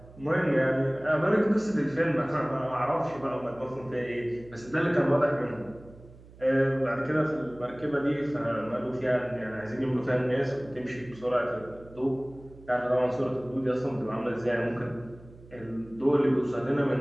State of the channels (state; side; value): noise; right; hum, 21 dB below the sound